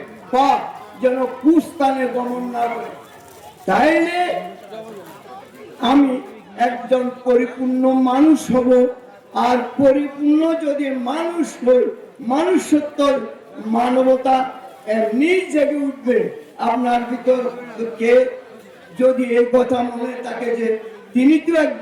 পা যেন কুস্থানে গমন না করে। তাইলে আমি একজন পরিপূর্ণ মানুষ হব। আর পরিপূর্ণ যদি মানুষ হই, মানুষত্ব, মানবতা এমনি জেগে উঠবে আপনার ভিতর। কে যদি এই কথা মনে থাকে যে তিনি তো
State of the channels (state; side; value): identical; both; correlation 1.00